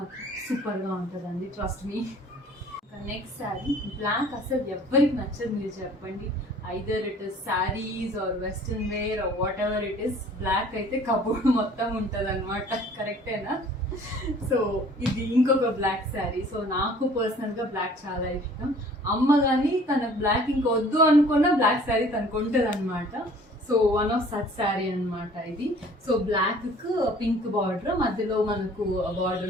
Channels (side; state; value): both; normal; correlation 0.52